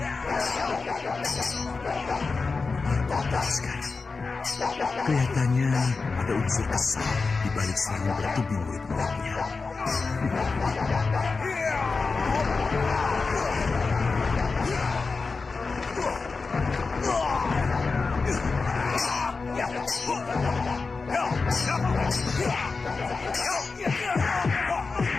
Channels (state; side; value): quieter; right; 4.3 dB